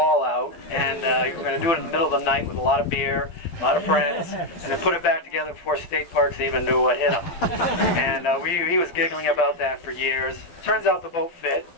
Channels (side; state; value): right; late; 12 ms